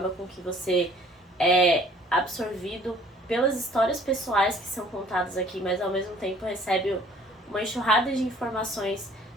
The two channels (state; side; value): normal; both; correlation 0.56